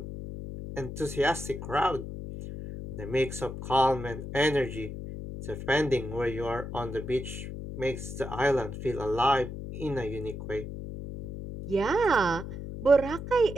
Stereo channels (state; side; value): noise; left; hum, 8 dB below the sound